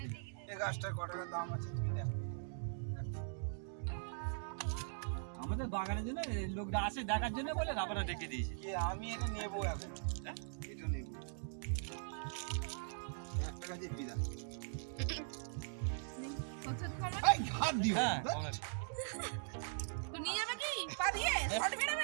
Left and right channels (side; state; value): left; silent; digital silence